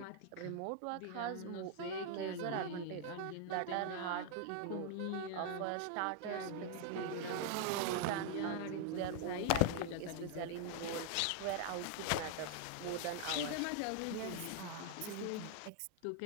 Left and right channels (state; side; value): different; both; correlation 0.00